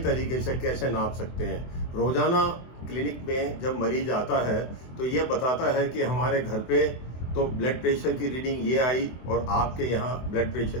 तरीके से कैसे नाप सकते हैं। रोजाना क्लिनिक में जब मरीज आता है तो ये बताता है कि हमारे घर पे तो ब्लड प्रेशर की रीडिंग ये आई और आपके यहाँ ब्लड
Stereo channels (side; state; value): right; late; 24 ms